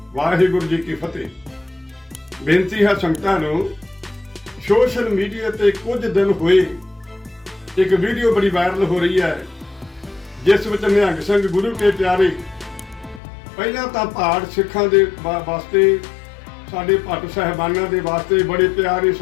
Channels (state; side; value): drops out; right; at 13.2 s